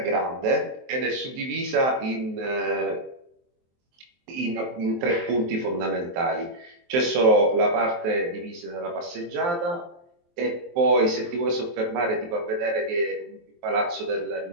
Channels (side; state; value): left; late; 23 ms